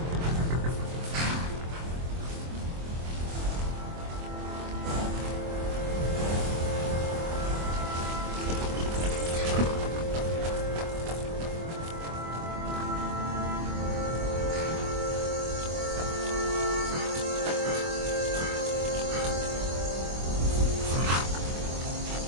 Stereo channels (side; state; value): left; late; 24 ms